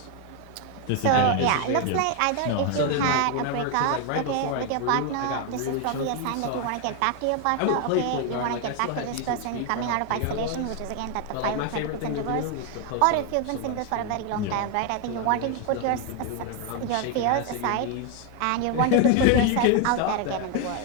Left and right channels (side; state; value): both; different; correlation 0.01